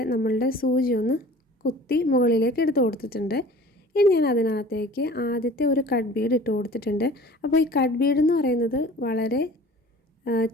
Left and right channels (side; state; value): both; normal; correlation 0.45